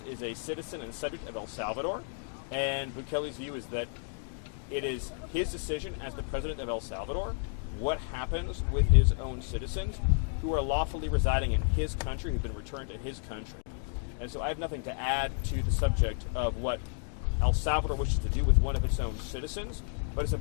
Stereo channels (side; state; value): right; silent; 57 dB below the other